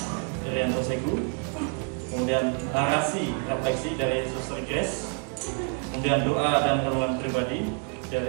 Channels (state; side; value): quieter; left; 38.4 dB